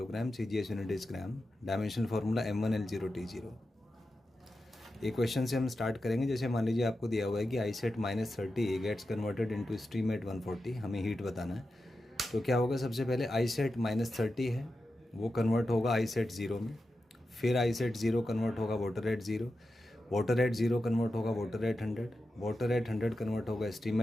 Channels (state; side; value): normal; both; correlation 0.90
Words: CGS unit is gram, dimensional formula M1L0T0। एक क्वेश्चन से हम स्टार्ट करेंगे। जैसे मान लीजिए आपको दिया हुआ है कि ice at -30 gets converted into steam at 140, हमें हीट बताना है। तो क्या होगा, सबसे पहले आई सेट -30 है, वो कन्वर्ट होगा आई सेट 0 में, फिर आई सेट 0 कन्वर्ट होगा water at 0, water at 0 convert होगा water at 100, water at 100 convert होगा स्टीम